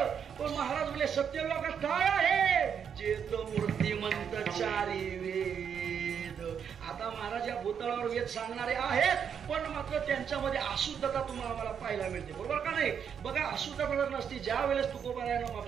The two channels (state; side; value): quieter; left; 7.6 dB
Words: पण महाराज बोले सत्य लोकात काय आहे? चेत मूर्तिमंत चारी वेद. आता महाराज या भूतळावर वेद सांगणारे आहेत पण मात्र त्यांच्यामध्ये अशुद्धता तुम्हाला मला पाहायला मिळते, बरोबर का नाही? बघा अशुद्धता जर नसती ज्या वेळेस तुकोबरायानं